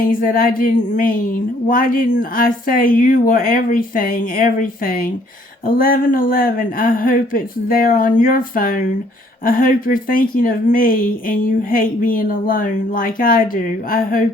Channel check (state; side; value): normal; both; correlation 0.63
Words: that I didn't mean? Why didn't I say you were everything, everything? 11:11, I hope it's there on your phone. I hope you're thinking of me and you hate being alone like I do. I